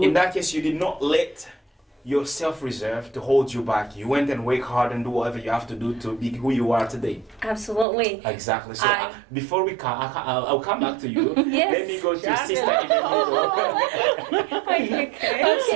in that case, you did not let your self-reserve to hold you back. You went and work hard and do whatever you have to do to be who you are today. Absolutely. Exactly. So I- before we come, I'll come back to you. Yes. Let me go to Yeah. Sister in the middle. Okay.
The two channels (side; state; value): left; drops out; at 7.9 s